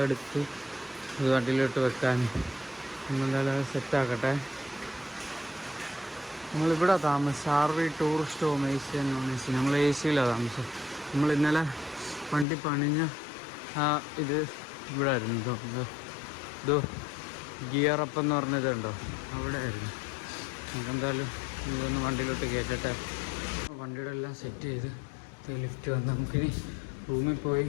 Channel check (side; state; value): right; drops out; at 12.5 s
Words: എടുത്ത് ഇത് വണ്ടിയിലോട്ട് വെക്കാൻ. നമ്മളെന്തായാലും അത് സെറ്റാക്കട്ടെ. നമ്മളിവിടെ താമസം ആർവി ടൂറിസ്റ്റ് ഹോം AC എന്ന്. നമ്മൾ AC-യിലാണ് താമസം. നമ്മൾ ഇന്നലെ വണ്ടി പണിഞ്ഞ ഇത് ഇവിടെ ആയിരുന്നു. ഇതോ ഗിയറപ്പ് എന്ന് പറഞ്ഞതുണ്ടോ, അവിടെ ആയിരുന്നു. നമുക്കെന്തായാലും ഇതൊന്ന് വണ്ടിയിലോട്ട് കയറ്റട്ടെ. വണ്ടിയുടെ എല്ലാം സെറ്റ് ചെയ്ത് ലിഫ്റ്റ് വന്ന് നമുക്കിനി റൂമിൽ പോയി